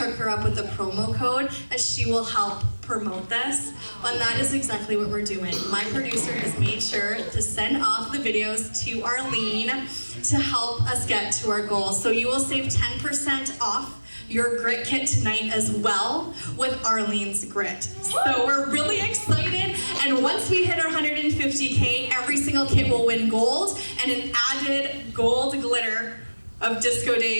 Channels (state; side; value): inverted; both; correlation -1.00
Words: her up with a promo code, as she will help promote this. And that is exactly what we're doing. My producer has made sure to send off the videos to Arlene to help us get to our goals. So you will save 10% off your grit kit tonight as well with Arlene's grit. So we're really excited, and once we hit our 150K, every single kit will win gold, and an added gold glitter of Disco